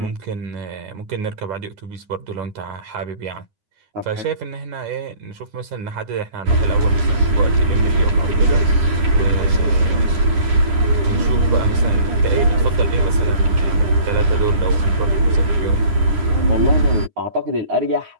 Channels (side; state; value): left; late; 9.7 ms